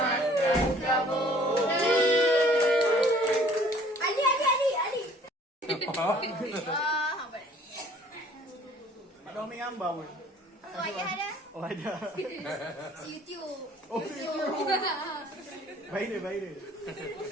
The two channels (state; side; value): normal; both; correlation 0.55